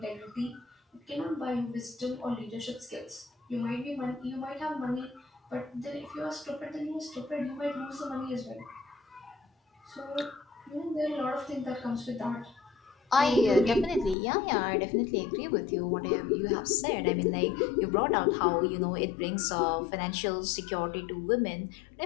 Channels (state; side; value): drops out; right; at 14.2 s